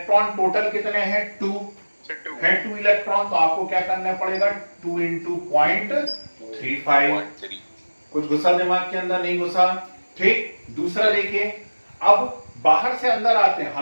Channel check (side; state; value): both; inverted; correlation -1.00